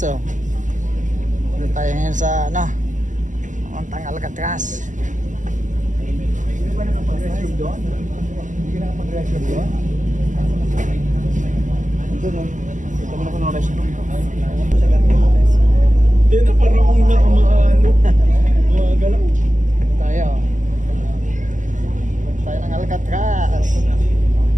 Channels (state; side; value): late; left; 0.37 ms